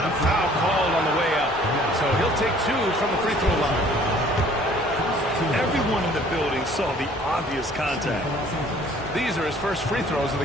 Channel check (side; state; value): both; normal; correlation 0.55